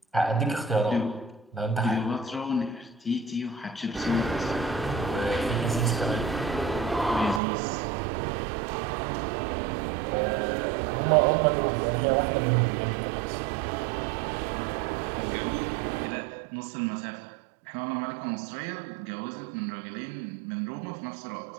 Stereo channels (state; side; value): drops out; left; at 7.4 s